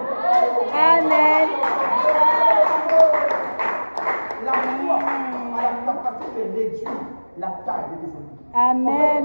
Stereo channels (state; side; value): inverted; both; correlation -1.00